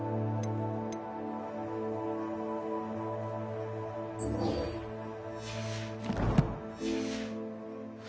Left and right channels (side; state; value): both; identical; correlation 1.00